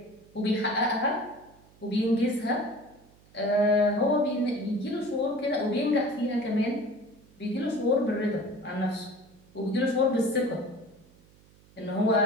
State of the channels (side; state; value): right; noise; hum, 28 dB below the sound